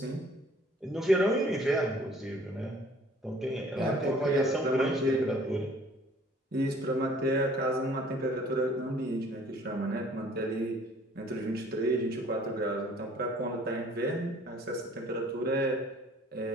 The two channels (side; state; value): both; normal; correlation 0.55